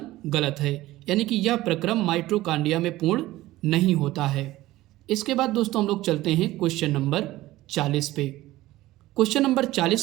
गलत है, यानी कि यह प्रक्रम माइटोकॉन्ड्रिया में पूर्ण नहीं होता है। इसके बाद दोस्तों हम लोग चलते हैं क्वेश्चन नंबर 40 पे। क्वेश्चन नंबर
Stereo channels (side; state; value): left; quieter; 16.9 dB